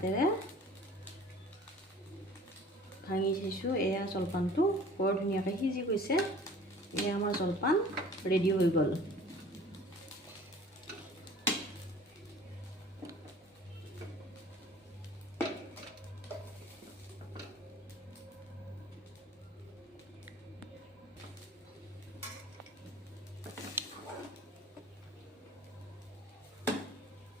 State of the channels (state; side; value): normal; both; correlation 0.48